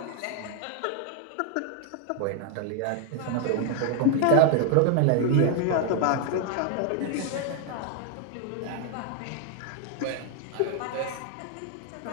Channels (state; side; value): different; both; correlation 0.00